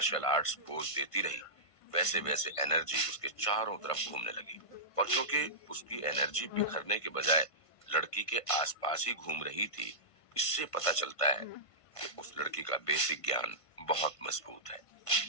आर्ट्स पोज देती रही वैसे वैसे एनर्जी उसके चारों तरफ घूमने लगी। और क्योंकि उसकी एनर्जी बिखरने के बजाय लड़की के आसपास ही घूम रही थी, इससे पता चलता है कि उस लड़की का बेसिक ज्ञान बहुत मजबूत है।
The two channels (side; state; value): right; late; 1.5 ms